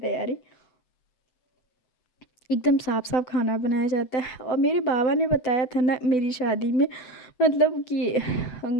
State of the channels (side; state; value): right; late; 7.9 ms